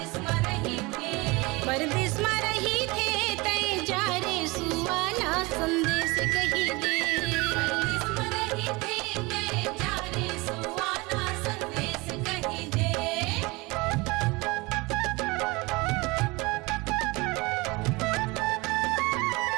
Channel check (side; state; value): left; quieter; 24.3 dB